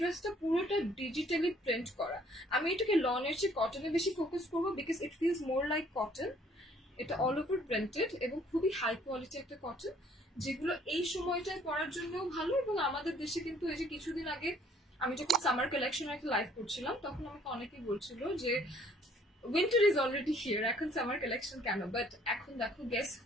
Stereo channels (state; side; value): normal; both; correlation 0.60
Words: ড্রেসটা পুরোটা ডিজিটালি প্রিন্ট করা। আমি এটাকে লনের চেয়ে কটনে বেশি ফোকাস করবো, because it feels more like cotton. এটা অল ওভার প্রিন্টেড এবং খুবই হাই কোয়ালিটি একটা কটন, যেগুলো এই সময়টায় পরার জন্যও ভালো। এবং আমাদের দেশে কিন্তু এই যে কিছুদিন আগে আমি যখন সামার কালেকশন একটা লাইভ করছিলাম, তখন আমাকে অনেকেই বলছিল যে উইন্টার ইজ অলরেডি হিয়ার, এখন সামার কালেকশন কেন? বাট এখন দেখো, গেস